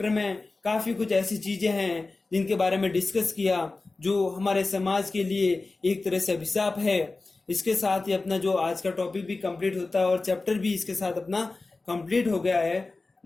में काफी कुछ ऐसी चीजें हैं जिनके बारे में डिस्कस किया जो हमारे समाज के लिए एक तरह से अभिशाप है। इसके साथ ही अपना जो आज का टॉपिक भी कंप्लीट होता है और चैप्टर भी इसके साथ अपना कंप्लीट हो गया है।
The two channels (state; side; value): quieter; right; 3.5 dB